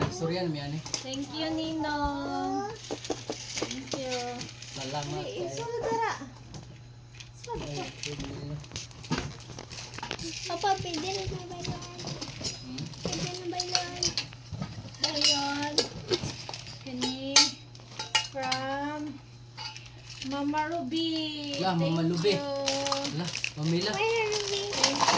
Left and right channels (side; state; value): both; identical; correlation 1.00